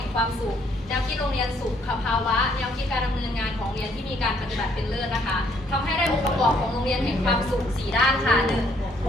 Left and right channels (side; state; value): both; normal; correlation 0.67